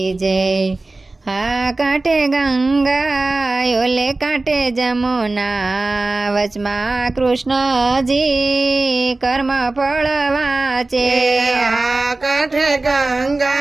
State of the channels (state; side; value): quieter; left; 3.1 dB